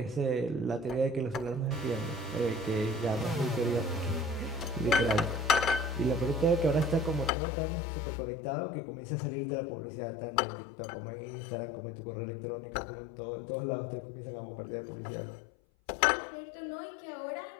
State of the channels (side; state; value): right; drops out; at 7.3 s